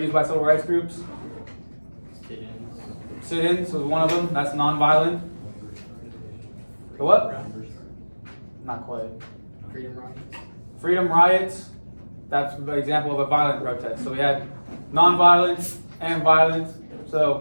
by civil rights groups? Sit-ins was one of them. That's non-violent. The what? Not quite. Freedom riots. That's an example of a violent protest. So we had non-violent and violent.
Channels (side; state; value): both; inverted; correlation -1.00